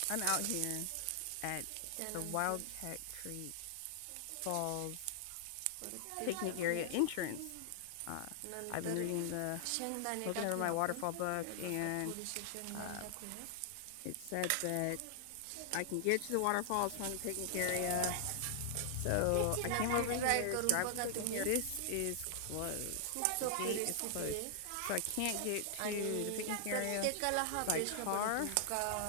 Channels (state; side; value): different; both; correlation -0.01